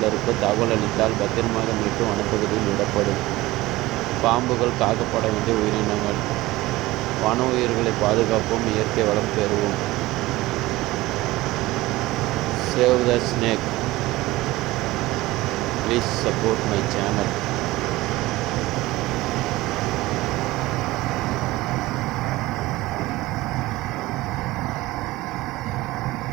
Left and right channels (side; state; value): left; quieter; 18.7 dB